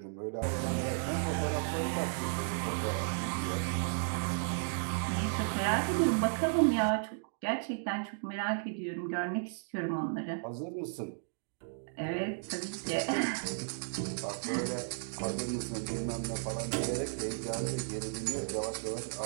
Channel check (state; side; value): silent; left; digital silence